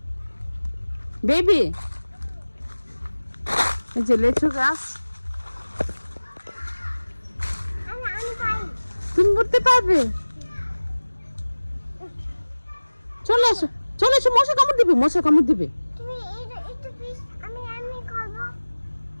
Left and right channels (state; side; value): inverted; both; correlation -1.00